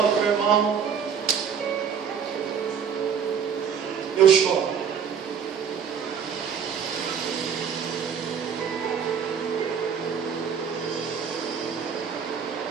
do meu irmão, eu choro.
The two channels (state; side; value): quieter; left; 7.2 dB